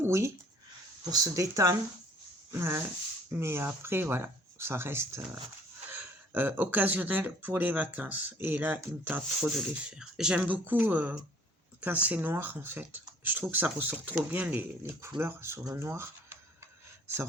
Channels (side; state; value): both; normal; correlation 0.56